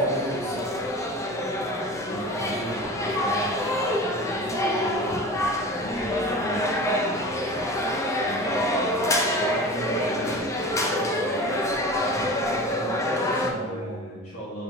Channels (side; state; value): both; normal; correlation 0.34